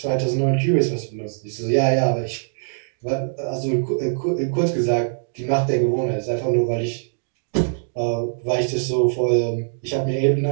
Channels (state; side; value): silent; left; digital silence